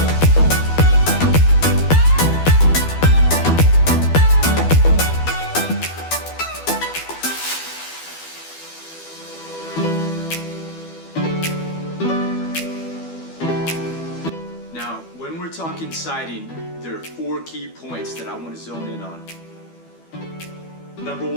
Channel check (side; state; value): right; late; 12 ms